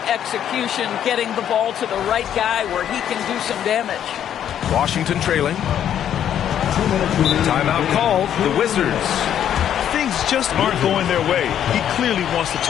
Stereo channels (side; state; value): right; quieter; 9.9 dB